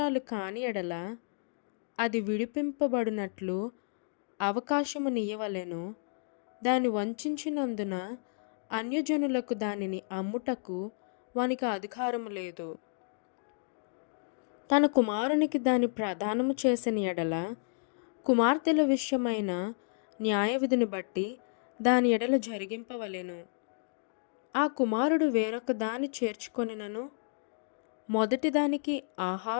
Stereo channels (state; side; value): silent; right; digital silence